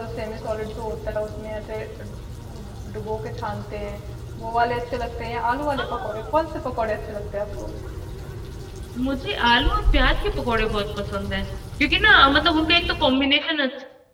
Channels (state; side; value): identical; both; correlation 1.00